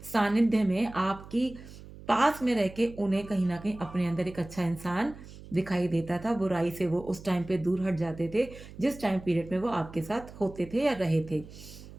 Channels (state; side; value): noise; right; hum, 17 dB below the sound